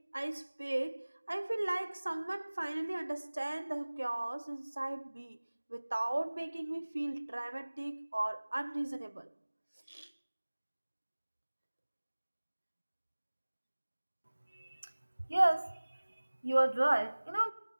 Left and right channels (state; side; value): inverted; both; correlation -1.00